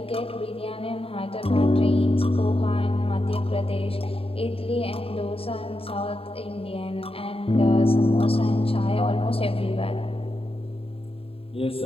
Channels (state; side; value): late; right; 0.27 ms